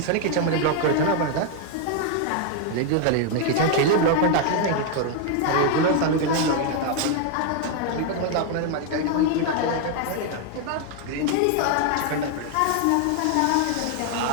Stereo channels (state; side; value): different; both; correlation 0.00